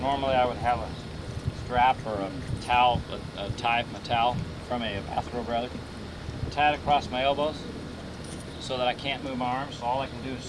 normally I would have a strap or a towel, a tie from a towel, from a bathrobe rather, tie it across my elbows so that I can't move my arms. So all I can do is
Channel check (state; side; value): identical; both; correlation 1.00